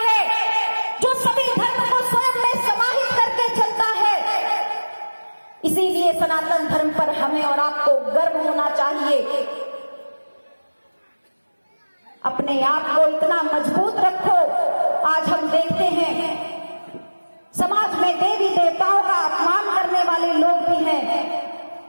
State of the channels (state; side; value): inverted; both; correlation -1.00